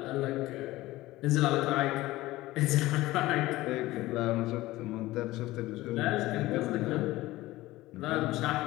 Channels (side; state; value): right; quieter; 17.8 dB